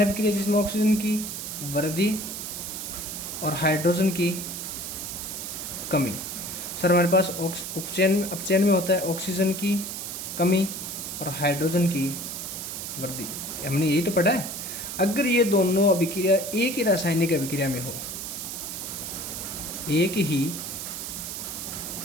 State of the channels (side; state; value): right; noise; hiss, 6 dB below the sound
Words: अभिक्रिया जिसमें ऑक्सीजन की वृद्धि और हाइड्रोजन की कमी। सर हमारे पास अपचयन में होता है ऑक्सीजन की कमी और हाइड्रोजन की वृद्धि। हमने यही तो पढ़ा है। अगर ये दोनों अभिक्रिया एक ही रासायनिक अभिक्रिया में हो, एक ही